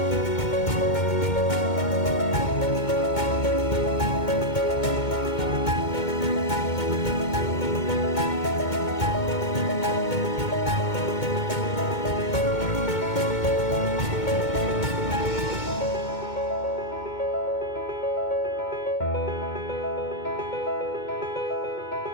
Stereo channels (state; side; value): late; right; 2.2 ms